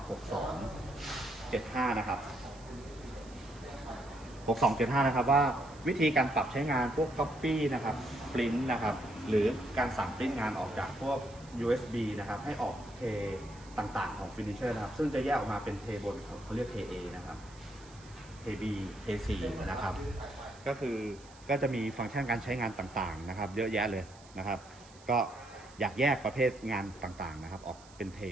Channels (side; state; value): right; noise; hiss, 23 dB below the sound